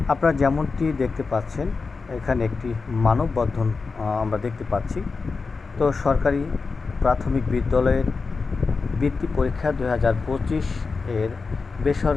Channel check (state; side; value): quieter; right; 4.5 dB